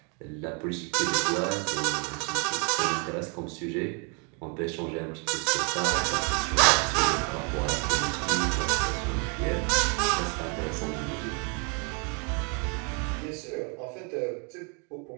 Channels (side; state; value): left; quieter; 35.7 dB